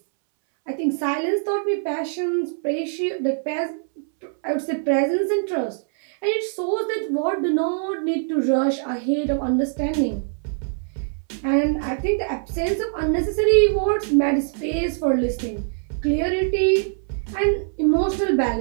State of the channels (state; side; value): silent; left; 63 dB below the other